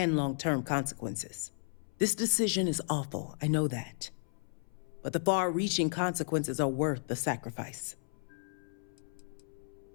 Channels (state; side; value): silent; right; 55 dB below the other